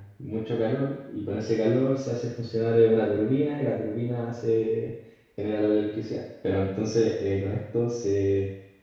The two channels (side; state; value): both; identical; correlation 1.00